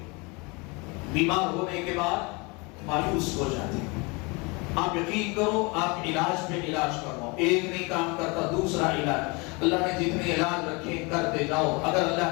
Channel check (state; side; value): quieter; right; 28.2 dB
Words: بیمار ہونے کے بعد مایوس ہو جاتے ہیں۔ آپ یقین کرو، آپ علاج پہ علاج کرو، ایک نہیں کام کرتا دوسرا علاج، اللہ نے جتنے علاج رکھے کرتے جاؤ، اگر